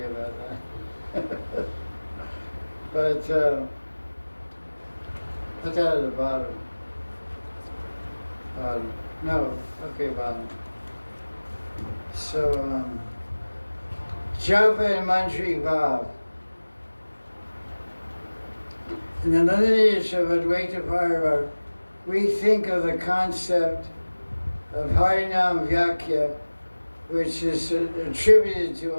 about that. But put that at the bottom. No, okay, bottom. So, Japa and Manjari Bhav. In the lineage of Advaita Parva, we think of the concept of Harinam Vyakya which is attributed to,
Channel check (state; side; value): inverted; both; correlation -1.00